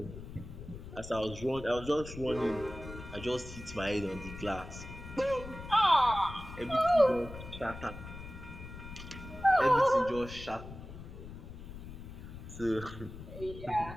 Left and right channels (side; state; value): left; noise; rumble, 12 dB below the sound